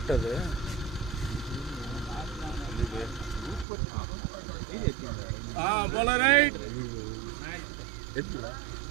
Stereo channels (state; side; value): drops out; left; at 3.7 s